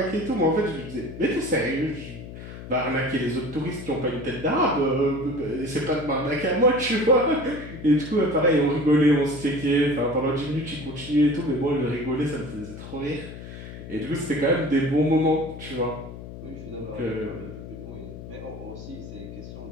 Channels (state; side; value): noise; left; hum, 12 dB below the sound